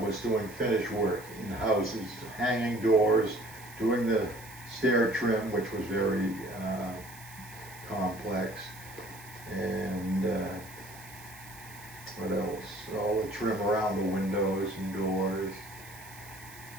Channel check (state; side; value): noise; right; hiss, 18 dB below the sound